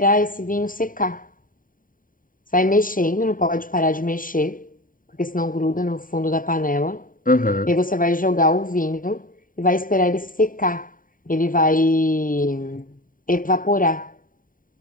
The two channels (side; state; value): right; late; 0.40 ms